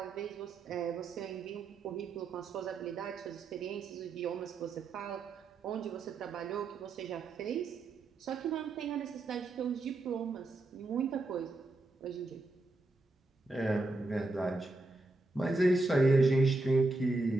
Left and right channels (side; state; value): left; quieter; 3.1 dB